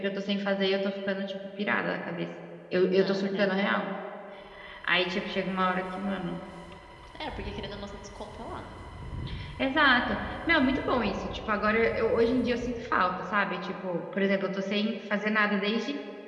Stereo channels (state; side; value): identical; both; correlation 1.00